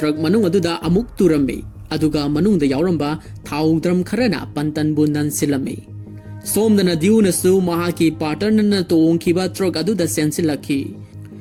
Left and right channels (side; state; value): both; identical; correlation 1.00